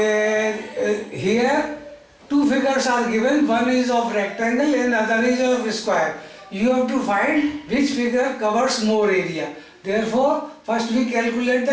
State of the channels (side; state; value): both; identical; correlation 1.00